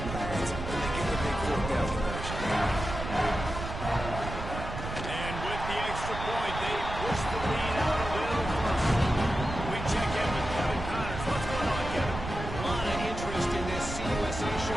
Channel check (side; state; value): right; noise; rumble, 7 dB below the sound